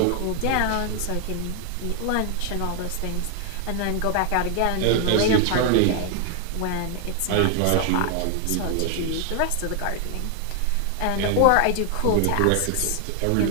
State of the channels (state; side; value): different; both; correlation 0.00